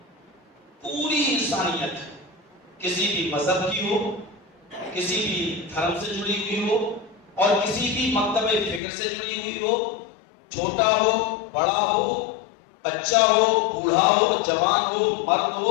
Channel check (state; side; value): drops out; right; at 8.8 s